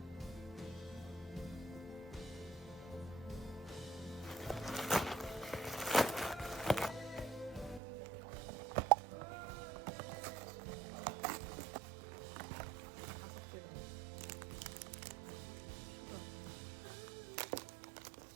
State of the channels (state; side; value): drops out; left; at 7.8 s